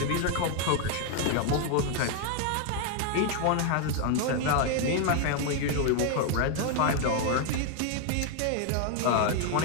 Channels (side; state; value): both; different; correlation 0.01